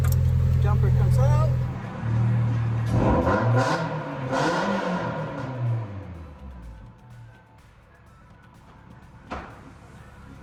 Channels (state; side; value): identical; both; correlation 1.00